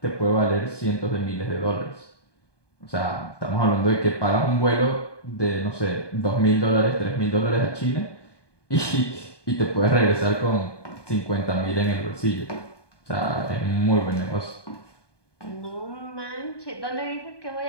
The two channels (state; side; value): late; right; 1.2 ms